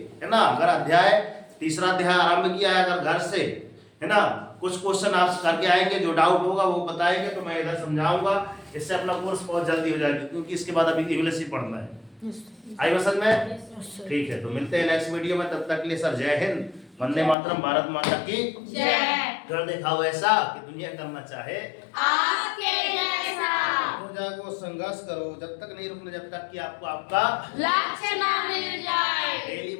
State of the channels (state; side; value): drops out; right; at 17.4 s